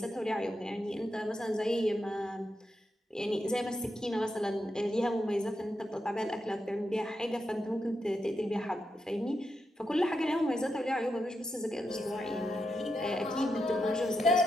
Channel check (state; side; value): normal; both; correlation 0.85